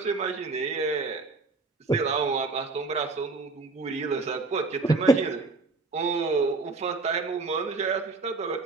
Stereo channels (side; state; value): left; quieter; 3.7 dB